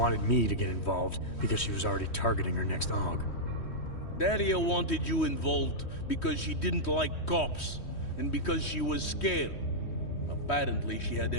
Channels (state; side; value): late; right; 3.1 ms